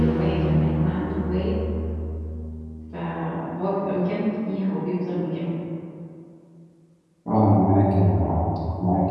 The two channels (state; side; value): identical; both; correlation 1.00